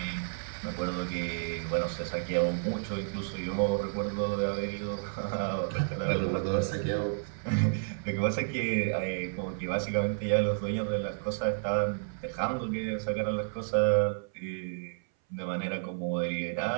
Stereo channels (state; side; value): silent; left; 57 dB below the other